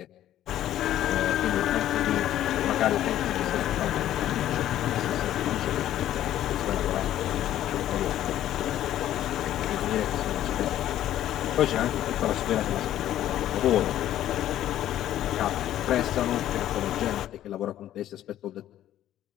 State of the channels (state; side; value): quieter; right; 12.4 dB